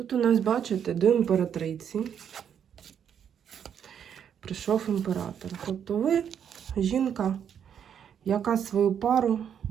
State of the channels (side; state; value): left; quieter; 8.4 dB